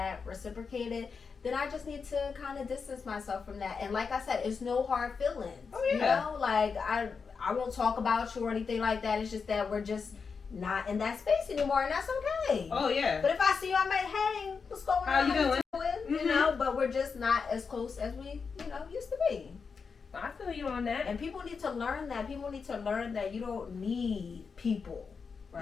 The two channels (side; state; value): right; quieter; 5.4 dB